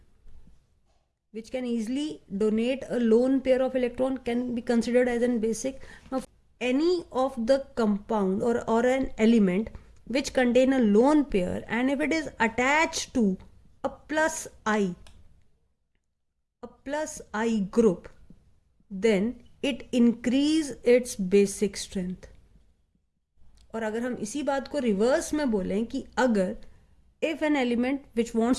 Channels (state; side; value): identical; both; correlation 1.00